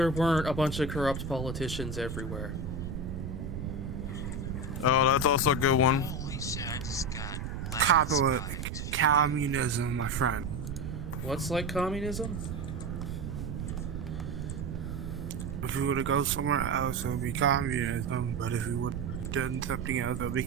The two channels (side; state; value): right; noise; rumble, 5 dB below the sound